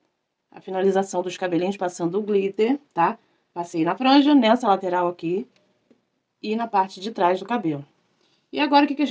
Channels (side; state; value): both; identical; correlation 1.00